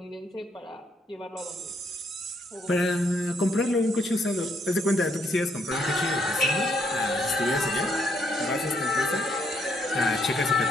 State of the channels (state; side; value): normal; both; correlation 0.73